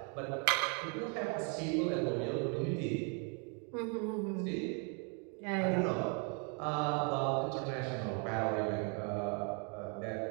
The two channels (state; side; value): quieter; left; 37.2 dB